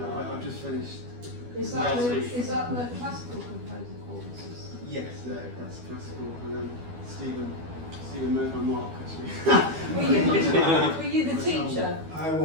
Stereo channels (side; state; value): left; late; 12 ms